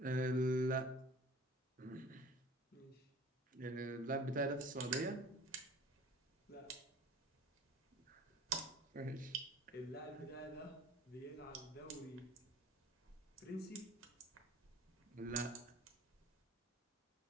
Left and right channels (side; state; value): both; normal; correlation 0.46